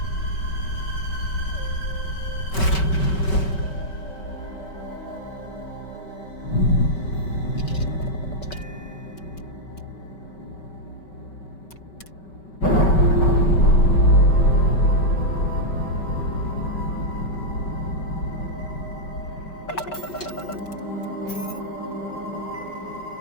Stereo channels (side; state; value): right; late; 5.3 ms